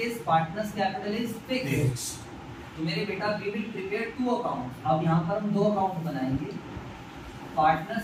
partners capital is fix, तो मेरे बेटा वी विल प्रिपेयर 2 अकाउंट। अब यहाँ पर हम 2 अकाउंट बनाएंगे।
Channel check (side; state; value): both; identical; correlation 1.00